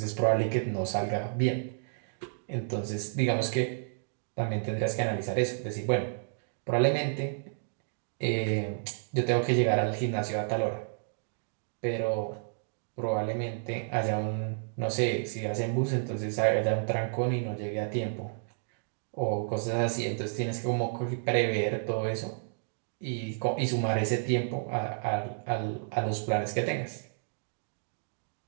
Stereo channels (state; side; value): silent; left; digital silence